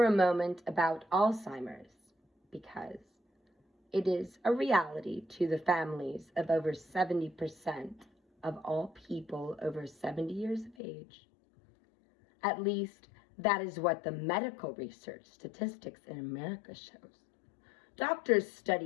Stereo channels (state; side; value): drops out; right; at 10.8 s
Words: a moment about Alzheimer's, because it is a reality to the families of over 70% of all people over 70 years of age. At least, that is what the medical research statistics in America shows. Doctors